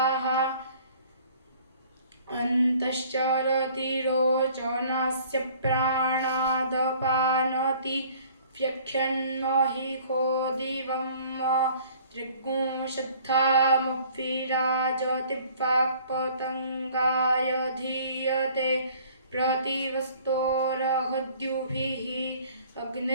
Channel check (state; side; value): inverted; both; correlation -0.54